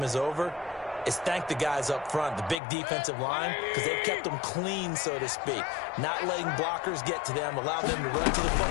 is over is thank the guys up front, the big defensive line, because they've kept them clean, so to speak. Not letting blockers get to them, allow them to run to the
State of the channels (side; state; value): right; drops out; at 2.6 s